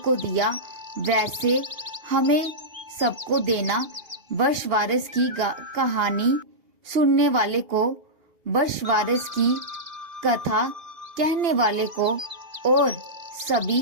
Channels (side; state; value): left; late; 2.8 ms